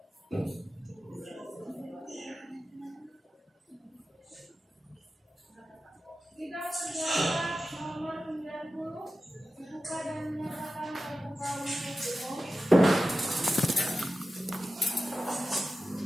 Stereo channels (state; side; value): normal; both; correlation 0.93